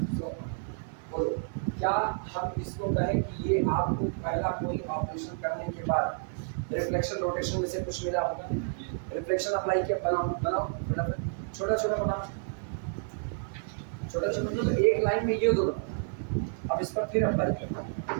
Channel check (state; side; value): silent; left; 58 dB below the other